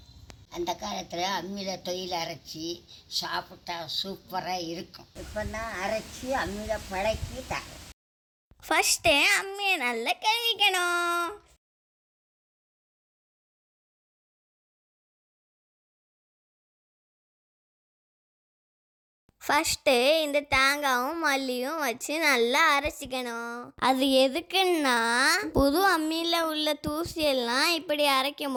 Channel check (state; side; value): identical; both; correlation 1.00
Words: அந்த காலத்தில் அம்மியில் தொழில் அரைச்சி சாப்பிட்டா சூப்பராக இருக்கும். இப்போ தான் அரைச்சி அம்மியில் பழக்கி தரோம். ஃபஸ்ட்டு அம்மியை நல்லா கழுவிக்கணும். ஃபஸ்ட்டு இந்த தேங்காயும் மல்லியும் வச்சு நல்லா அரைச்சிக்கணும். அது எதுக்குன்னா புது அம்மியில் உள்ள தூசியெல்லாம் இப்படி அரைக்கும்